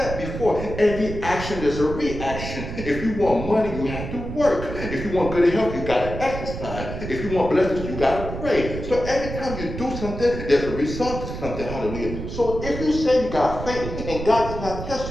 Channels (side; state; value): right; noise; rumble, 7 dB below the sound